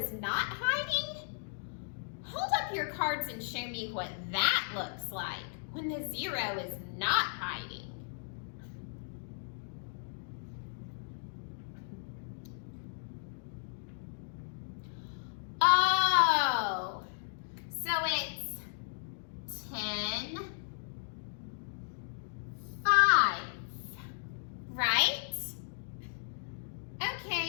not hiding. Hold up your cards and show me what that looks like when the 0 is not hiding. Oh, so it's 10, 5, right?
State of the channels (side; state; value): right; silent; digital silence